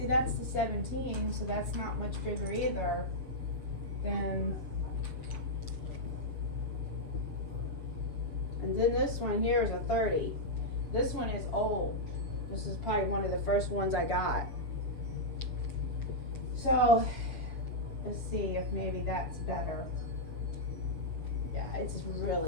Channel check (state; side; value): late; right; 7.1 ms